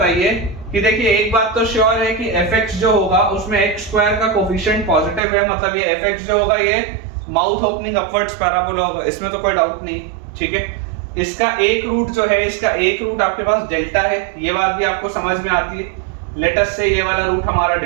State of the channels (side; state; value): left; drops out; at 5.2 s